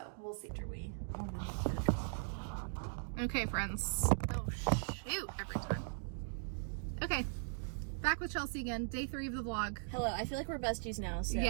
we'll see. Okay, friends. Oh shoot! Every time. Okay, back with Chelsea again. Day 3 of the vlog. Hello, I feel like we're besties now. So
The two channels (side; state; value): left; silent; digital silence